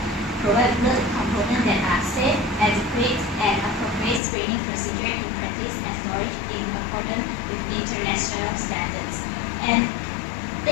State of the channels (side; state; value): right; drops out; at 4.2 s